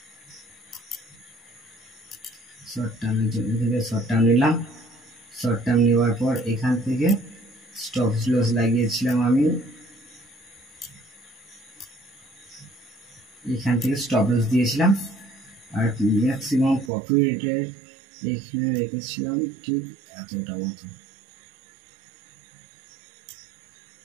শর্ট টার্মের জন্য থেকে শর্ট টার্ম নিলাম, শর্ট টার্ম নেওয়ার পর এখান থেকে স্টপ লস লাগিয়েছিলাম আমি, এখান থেকে স্টপ লস দিয়েছিলাম। আর ম্যাক্সিমাম প্রফিটের এখানে রেখেছিলাম ঠিক এতটা মতো,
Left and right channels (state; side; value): drops out; left; at 16.9 s